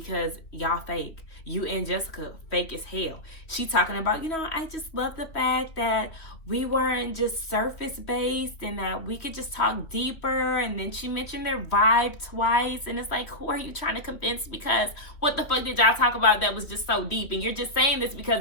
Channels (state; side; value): late; right; 3.1 ms